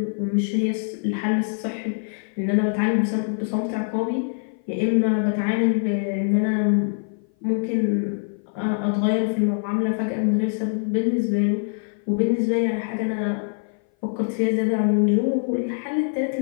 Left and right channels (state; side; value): silent; right; 57 dB below the other